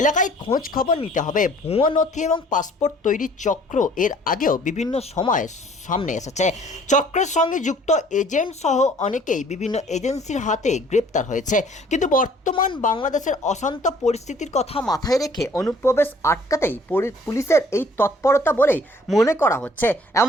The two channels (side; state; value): both; normal; correlation 0.56